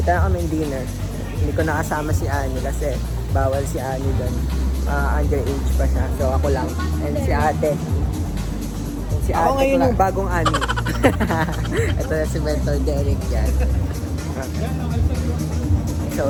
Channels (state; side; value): identical; both; correlation 1.00